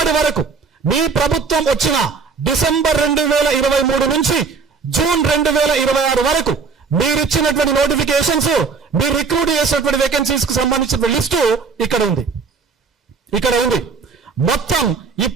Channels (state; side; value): quieter; left; 5.0 dB